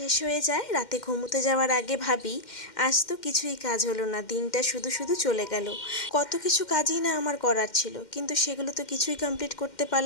হয়ে যায়, রাতে ঘুমোতে যাওয়ার আগে ভাবি আজ তো কিছুই কাজ হলো না, দিনটা শুধু শুধু চলে গেল। কত কিছু কাজই না আমার করার ছিল, কিন্তু সেগুলো তো কিছুই কমপ্লিট করতে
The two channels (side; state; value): right; late; 2.1 ms